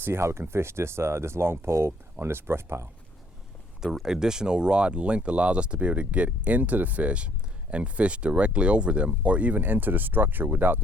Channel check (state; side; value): normal; both; correlation 0.64